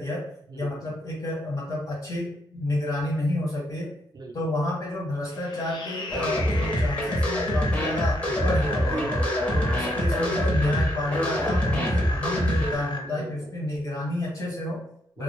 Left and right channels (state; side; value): normal; both; correlation 0.76